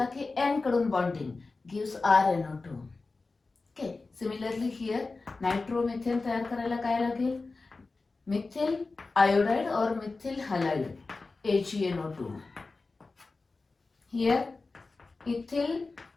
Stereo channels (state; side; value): quieter; right; 3.7 dB